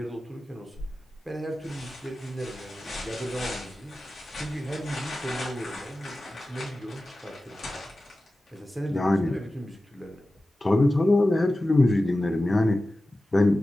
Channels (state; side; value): normal; both; correlation 0.95